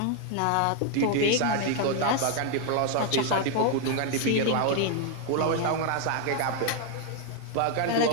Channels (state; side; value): different; both; correlation 0.00